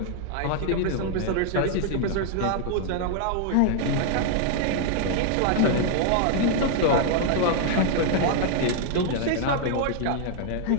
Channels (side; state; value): both; different; correlation 0.00